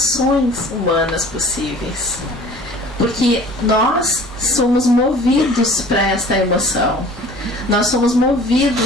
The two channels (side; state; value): both; normal; correlation 0.47